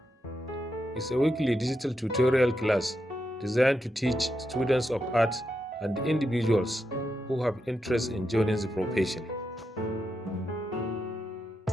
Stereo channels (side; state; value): both; normal; correlation 0.85